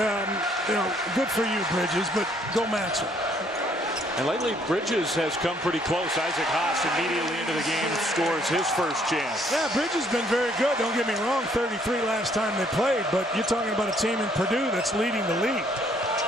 for you, Bridges, but go match him. And lately, Bridges has come pretty close. Isaac Haas immediately into the game scores his first chance. Yeah, Bridges has been very good. Don't get me wrong, 33 last time they played, but you're talking about a team in Purdue that's leading the league.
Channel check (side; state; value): both; normal; correlation 0.65